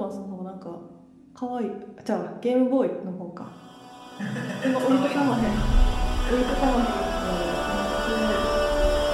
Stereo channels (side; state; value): both; identical; correlation 1.00